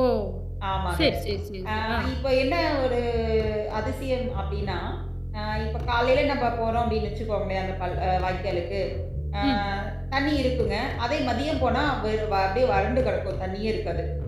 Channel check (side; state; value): both; identical; correlation 1.00